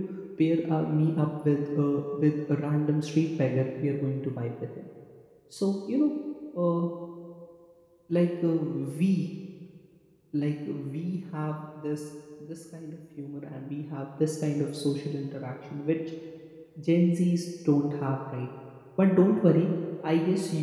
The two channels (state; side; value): identical; both; correlation 1.00